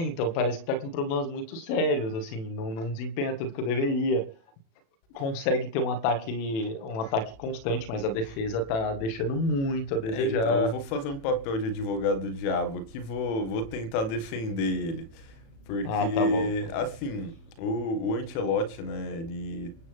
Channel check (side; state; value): right; late; 36 ms